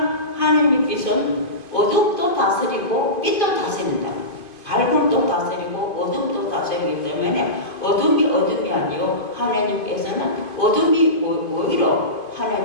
하나님의 빛은 어둠도 다스리고 빛도 다스린다. 밝음도 다스리고 어둠도 다스리기 때문에 어둠이 아니요 하나님께서는 어둠이 오히려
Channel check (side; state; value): right; late; 2.5 ms